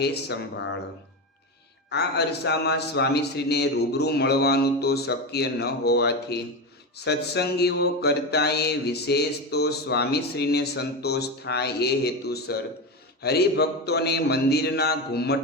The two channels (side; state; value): both; normal; correlation 0.18